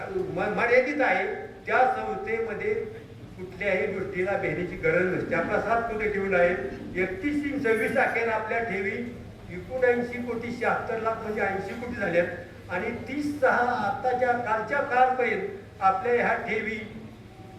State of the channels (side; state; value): both; identical; correlation 1.00